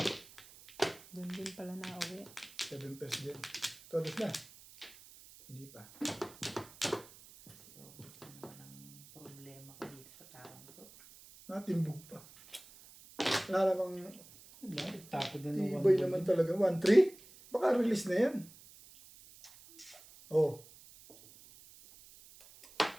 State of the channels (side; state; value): right; noise; hiss, 21 dB below the sound